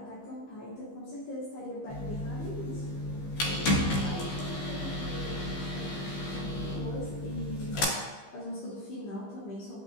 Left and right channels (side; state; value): right; late; 15 ms